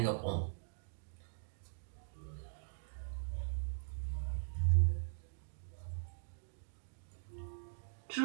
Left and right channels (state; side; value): silent; left; digital silence